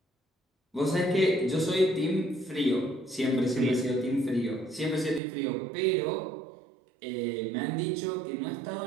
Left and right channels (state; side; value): drops out; left; at 5.2 s